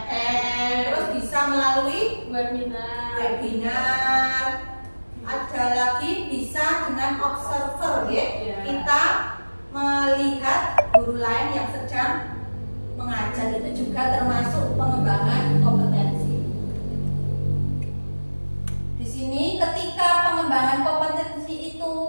terus bisa melalui webinar. Ada lagi bisa dengan observer ya. Kita melihat guru lain yang sedang mengajar, itu juga termasuk pengembangan kompetensi. Di sini ketika pengembangan kompetensi itu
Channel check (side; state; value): both; inverted; correlation -1.00